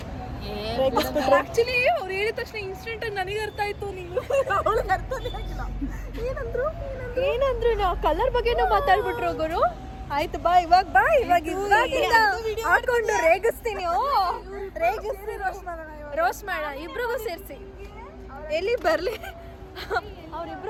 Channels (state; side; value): identical; both; correlation 1.00